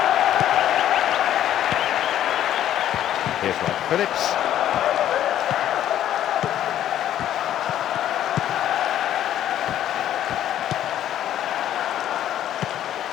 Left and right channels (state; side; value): quieter; right; 11.5 dB